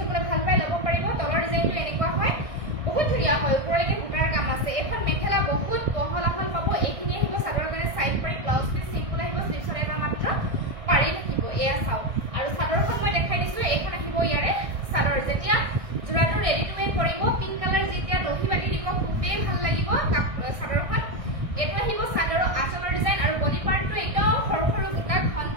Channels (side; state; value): left; late; 1.6 ms